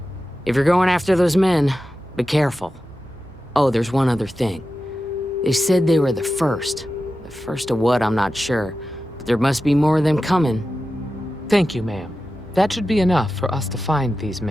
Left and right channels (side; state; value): both; normal; correlation 0.92